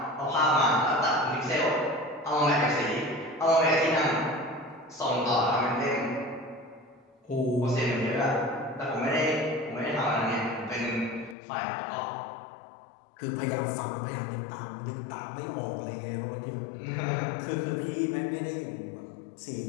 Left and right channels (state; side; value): drops out; right; at 11.4 s